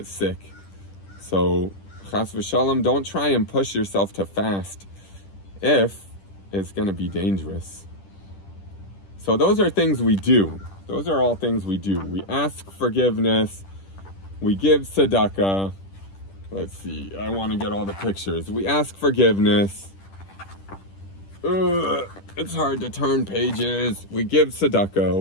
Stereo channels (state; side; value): late; right; 10 ms